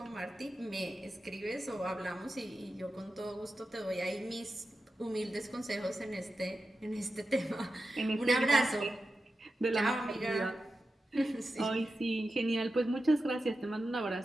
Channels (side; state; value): both; normal; correlation 0.91